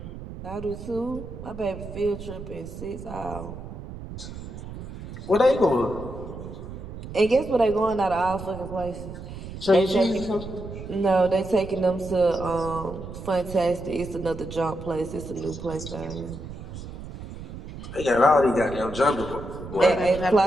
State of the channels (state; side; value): noise; right; rumble, 11 dB below the sound